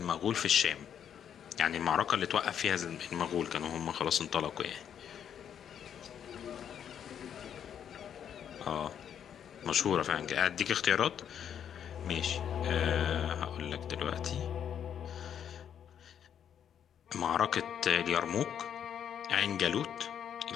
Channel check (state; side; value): quieter; right; 8.8 dB